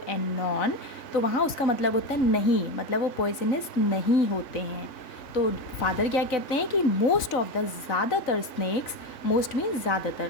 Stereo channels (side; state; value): right; late; 3.5 ms